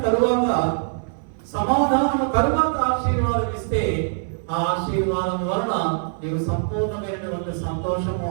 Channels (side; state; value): left; silent; 59 dB below the other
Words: తరువాత ఆశీర్వాదం ఇస్తే ఆ ఆశీర్వాదం వలన నీవు సంపూర్ణమైనటువంటి సంతోషము